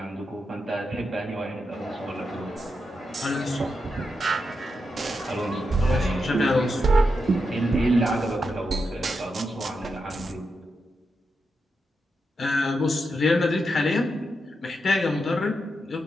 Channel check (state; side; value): normal; both; correlation 0.86